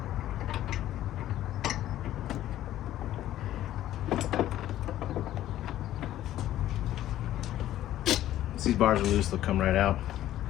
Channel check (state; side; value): quieter; right; 13.2 dB